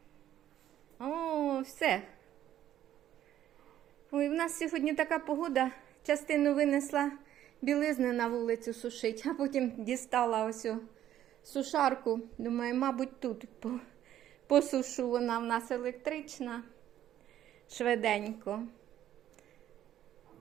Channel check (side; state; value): left; quieter; 11.8 dB